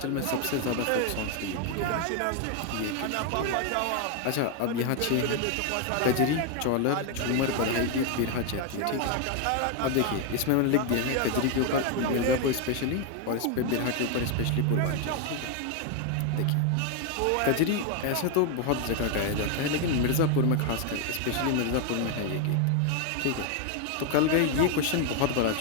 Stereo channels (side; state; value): both; different; correlation 0.01